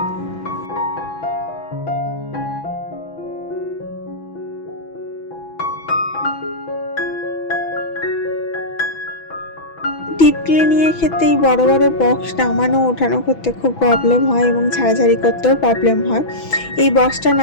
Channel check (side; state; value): right; late; 6.1 ms